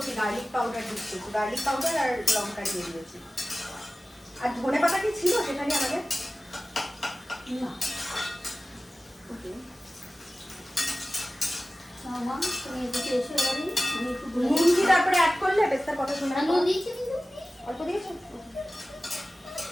গার্লিক পাউডার দিচ্ছি, গার্লিক পাউডার আর লঙ্কা দিয়ে দিয়েছি। আর ধনে পাতা কি ছিল সেখানে আমাদের? না তুমি এদিকে এসে এবারে আমি একটু নুন কি তারপরে অ্যাড করলে পেস্তার কথা শুনে? নুন দিয়েছি, অল্প দিয়েছো?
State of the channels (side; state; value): both; normal; correlation 0.96